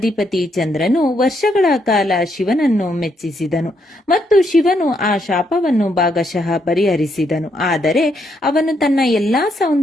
ಚಂದ್ರನು ವರ್ಷಗಳ ಕಾಲ ಶಿವನನ್ನು ಮೆಚ್ಚಿಸಿದನು ಮತ್ತು ಶಿವನು ಆ ಶಾಪವನ್ನು ಭಾಗಶಃ ಪರಿಹರಿಸಿದನು. ಆದರೆ ಅವನು ತನ್ನ ಎಲ್ಲಾ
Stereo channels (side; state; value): both; normal; correlation 0.76